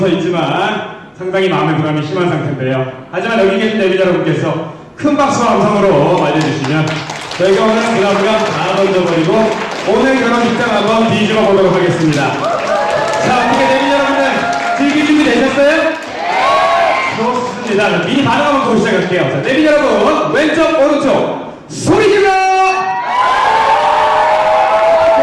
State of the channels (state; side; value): identical; both; correlation 1.00